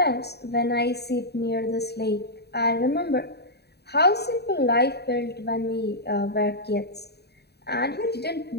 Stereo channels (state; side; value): late; right; 0.48 ms